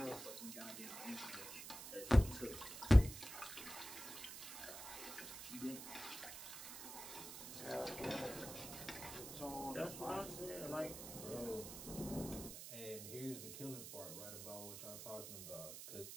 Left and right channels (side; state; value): right; noise; hiss, 9 dB below the sound